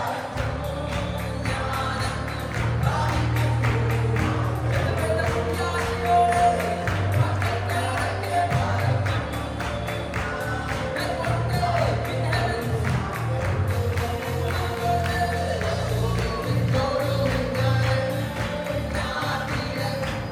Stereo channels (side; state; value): both; identical; correlation 1.00